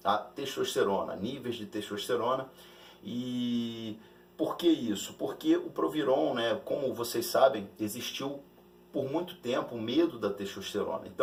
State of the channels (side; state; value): both; identical; correlation 1.00